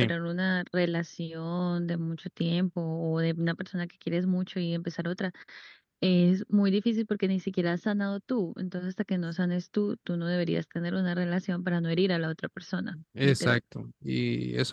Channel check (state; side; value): identical; both; correlation 1.00